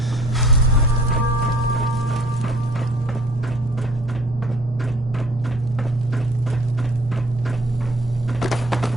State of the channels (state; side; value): normal; both; correlation 0.54